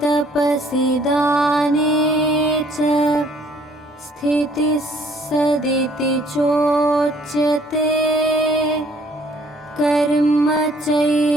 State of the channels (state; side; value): normal; both; correlation 0.60